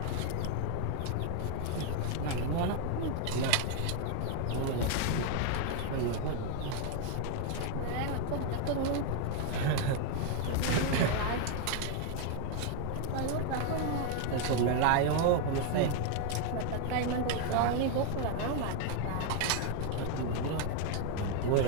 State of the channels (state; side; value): different; both; correlation 0.00